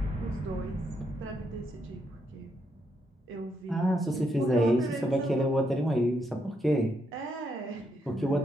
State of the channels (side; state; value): both; normal; correlation 0.78